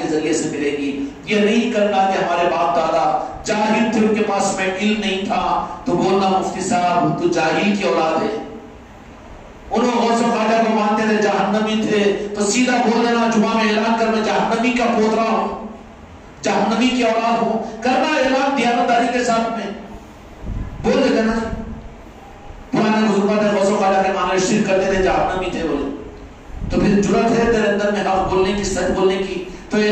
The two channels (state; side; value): identical; both; correlation 1.00